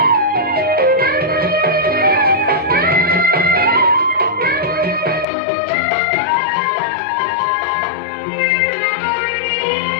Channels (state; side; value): drops out; right; at 5.2 s